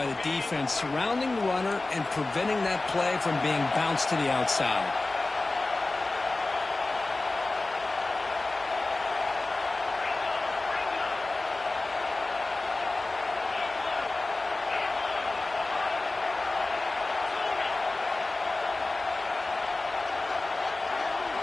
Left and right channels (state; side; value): quieter; right; 3.2 dB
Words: the defense surrounding the runner and preventing that play from being bounced to the outside.